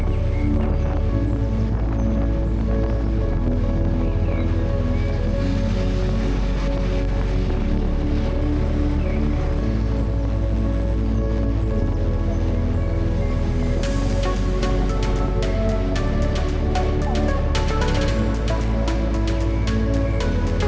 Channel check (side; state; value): both; identical; correlation 1.00